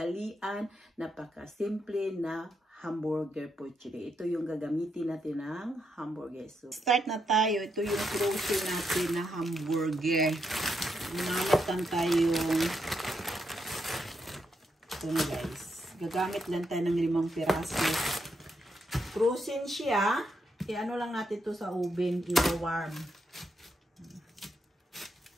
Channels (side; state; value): both; normal; correlation 0.81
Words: napaka-simple na hamburger for today. Ito yung gagamitin natin ng hamburger. So, start na tayo. Ito yung frozen natin na hamburger. Mamatan tayong ito na guys. Gagamit lang tayo ng 5 piraso. Frozen siya. I-ano lang natin ito sa oven. I-warm.